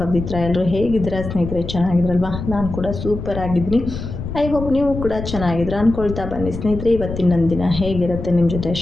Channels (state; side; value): noise; left; rumble, 7 dB below the sound